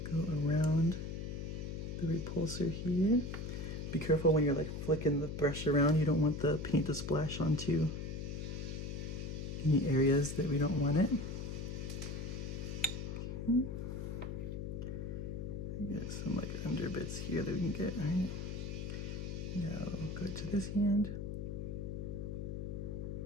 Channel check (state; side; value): noise; left; hum, 5 dB below the sound